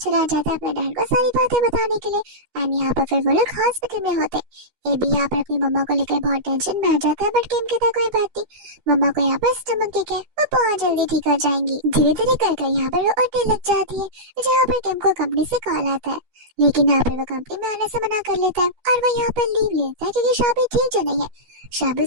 जाता है अपने डैड को सारी बातें बताने के लिए। एंड यहाँ पर फिर वो लोग हॉस्पिटल में होते हैं। ये भी यहाँ पर अपनी मम्मा को लेकर बहुत टेंशन में आ जाता है, बट किम कहता है कोई बात नहीं, मम्मा को यहाँ पर स्टमक ठीक है, वो बहुत जल्दी ठीक हो जाएंगी। धीरे धीरे कर यहाँ पर वो उठने लग जाती है, जहाँ पर किम को कंपनी से कॉल आता है, लेकिन यहाँ पर वो कंपनी में आने से मना कर लेता है और वो यहाँ पर लीव लेता है क्योंकि शाबी ठीक जो नहीं है। शाबी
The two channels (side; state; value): left; late; 12 ms